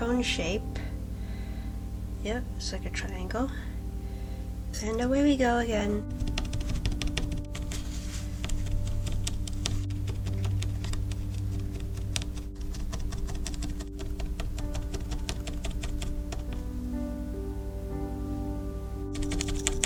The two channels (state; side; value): identical; both; correlation 1.00